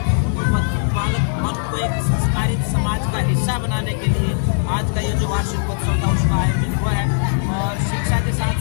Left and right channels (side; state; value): right; silent; digital silence